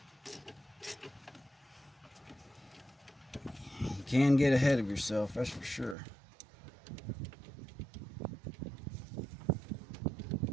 can get ahead of yourself, that's for sure.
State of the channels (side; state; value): left; drops out; at 6.0 s